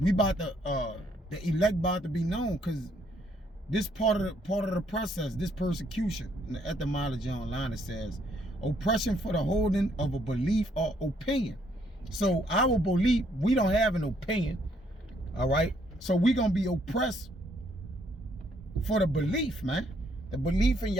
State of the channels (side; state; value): both; normal; correlation 0.69